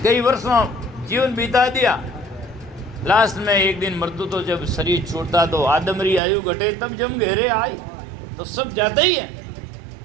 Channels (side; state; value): left; drops out; at 6.2 s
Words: कई वर्षों जीवन बिता दिया, लास्ट में एक दिन मृत्यु, तो जब शरीर छूटता तो आदमरी आयु घटे तब जम घेरे आई, तो सब जाता ही है।